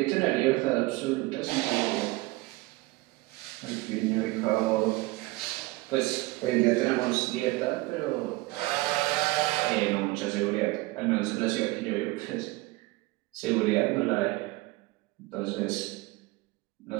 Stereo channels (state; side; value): quieter; left; 21.6 dB